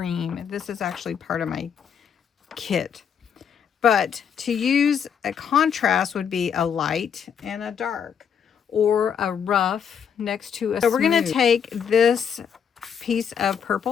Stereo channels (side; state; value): right; quieter; 7.6 dB